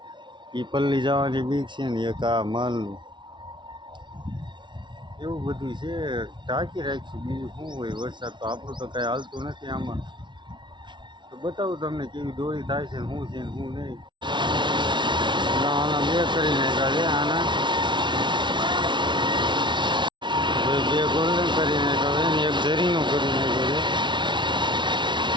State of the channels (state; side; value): late; left; 0.23 ms